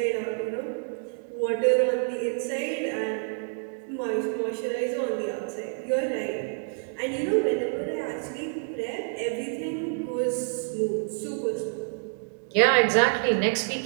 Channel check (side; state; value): left; silent; 60 dB below the other